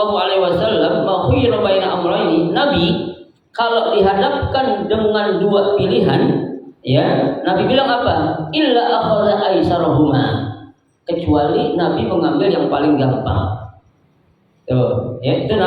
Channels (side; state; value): both; identical; correlation 1.00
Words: alaihi wasallam ma khayyara baina amrayni. Nabi kalau dihadapkan dengan 2 pilihan, ya, Nabi bilang apa? Illa akhadha aisarahuma. Kecuali Nabi mengambil yang paling gampang. Tuh, ya itu